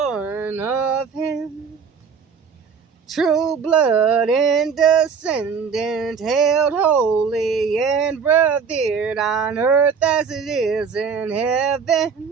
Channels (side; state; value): left; quieter; 6.0 dB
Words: of him. True blood and descendant, held holy and revered on earth as it is in